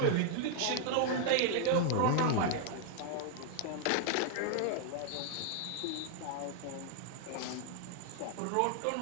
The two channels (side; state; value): both; different; correlation 0.00